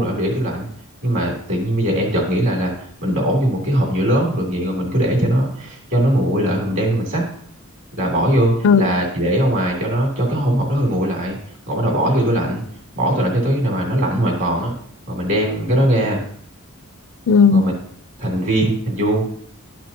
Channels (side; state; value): both; normal; correlation 0.52